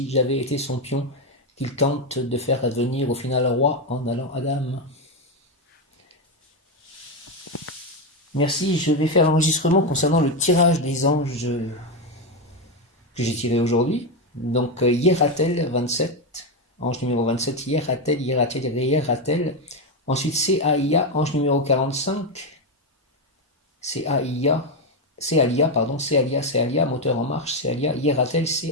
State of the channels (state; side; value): normal; both; correlation 0.08